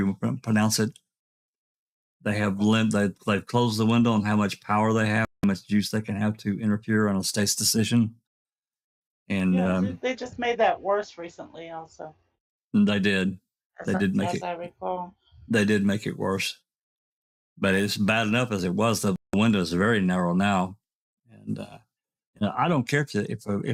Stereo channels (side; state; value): both; identical; correlation 1.00